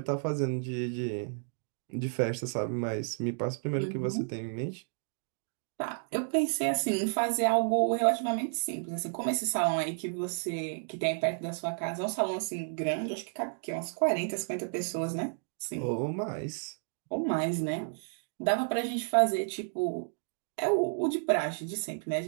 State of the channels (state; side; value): silent; left; digital silence